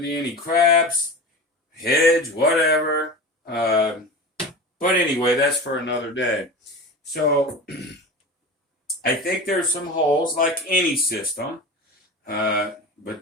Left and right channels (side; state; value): both; normal; correlation 0.30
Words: any craps, hedge, whatever. But anyway, that's for another day. So I think there's some holes like any system. But